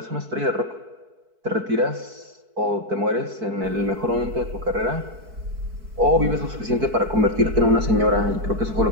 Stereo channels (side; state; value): left; late; 4.6 ms